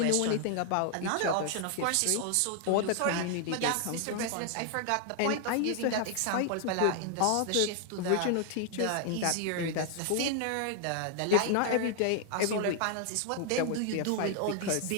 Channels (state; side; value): different; both; correlation 0.00